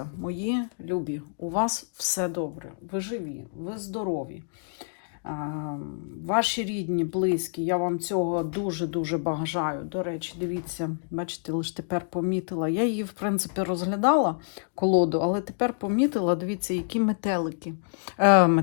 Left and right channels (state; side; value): silent; right; digital silence